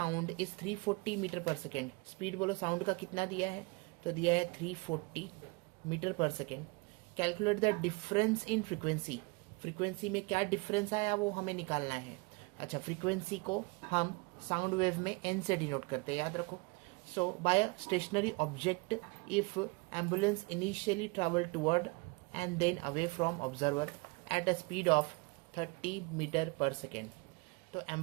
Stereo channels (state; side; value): quieter; left; 27.8 dB